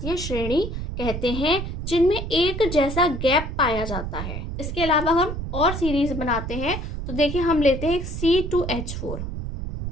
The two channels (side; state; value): right; noise; rumble, 5 dB below the sound